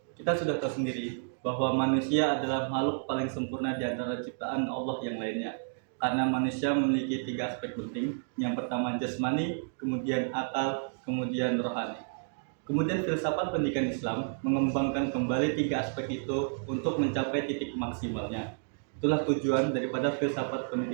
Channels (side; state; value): left; silent; digital silence